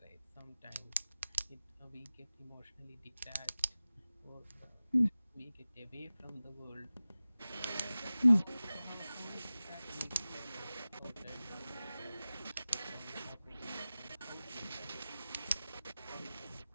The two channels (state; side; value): inverted; both; correlation -0.96